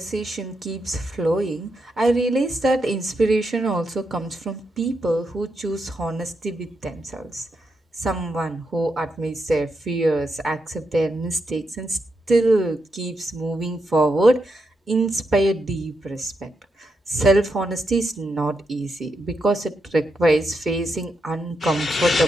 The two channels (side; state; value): both; normal; correlation 0.83